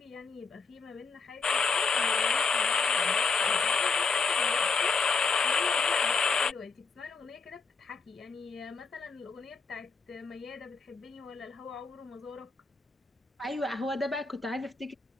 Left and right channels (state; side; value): quieter; right; 4.8 dB